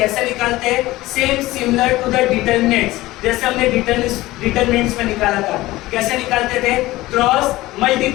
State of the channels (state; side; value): quieter; right; 18.0 dB